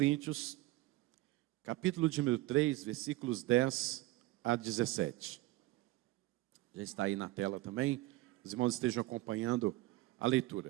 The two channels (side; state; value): left; quieter; 18.5 dB